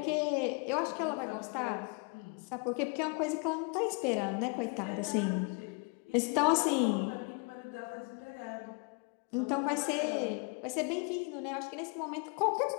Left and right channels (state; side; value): quieter; right; 33.5 dB